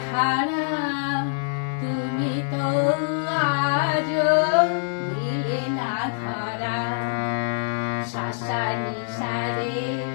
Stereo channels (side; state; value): right; silent; digital silence